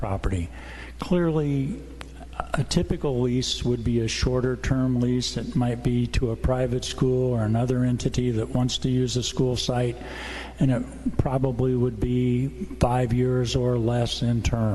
Clearly, a typical lease would be a shorter term lease. It might be to a private school or another entity that wants to use a school site, and it probably would be 5 years or less in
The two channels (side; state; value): both; identical; correlation 1.00